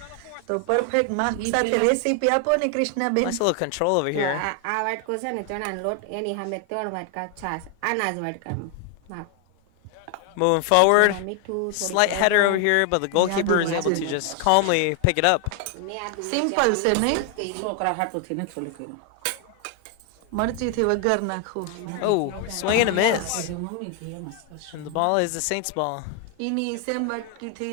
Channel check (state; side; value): different; both; correlation 0.00